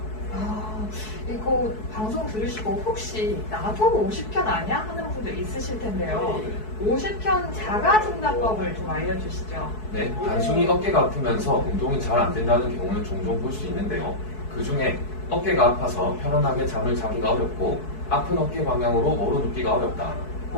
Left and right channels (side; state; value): right; late; 4.6 ms